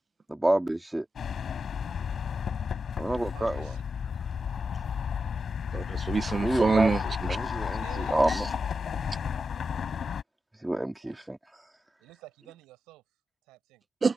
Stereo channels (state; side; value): normal; both; correlation 0.88